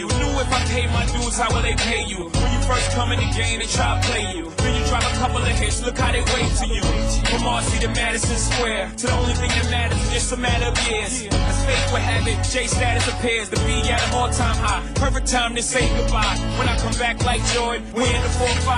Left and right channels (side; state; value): both; identical; correlation 1.00